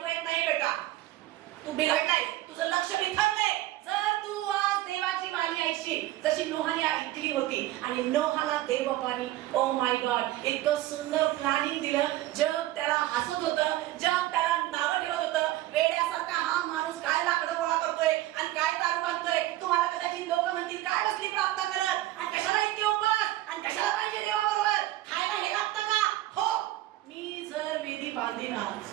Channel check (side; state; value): left; quieter; 15.6 dB